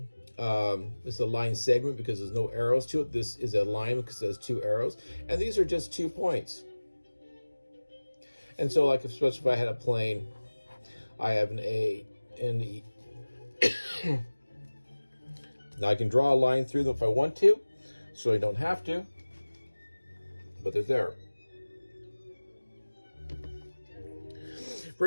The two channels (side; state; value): both; inverted; correlation -1.00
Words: this is a line segment because there's no arrows to it. This is a line because it has two arrows. And these are just 2 points. And so, like, especially if I had a plane, I have an A and E. Now I can draw a line through them if I want to, so I don't have to, but they're there.